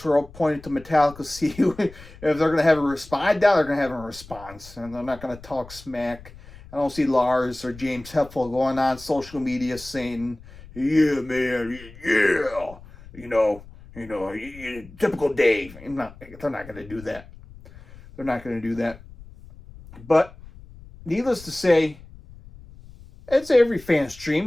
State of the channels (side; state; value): left; noise; rumble, 19 dB below the sound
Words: all pointing to Metallica. See if they're going to have a response. I doubt they're going to have a response, and they're not going to talk smack. I don't see Lars or James Hetfield going on social media saying, "Yeah, man, yeah, typical Dave." They're not going to do that. They're not going to do that. But needless to say, It's every fan's